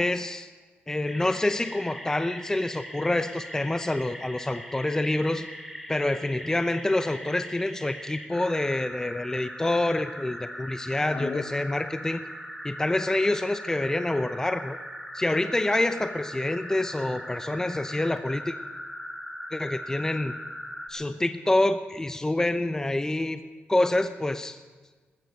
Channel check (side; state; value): both; normal; correlation 0.96